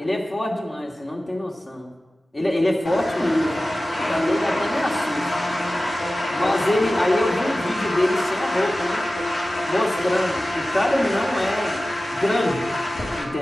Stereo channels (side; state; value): both; normal; correlation 0.96